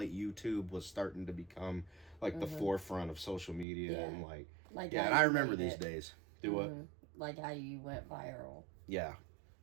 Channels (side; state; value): left; drops out; at 3.7 s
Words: YouTube was starting to become like the forefront of social media and and I remember these days. Do what? Like how you went viral. Yeah.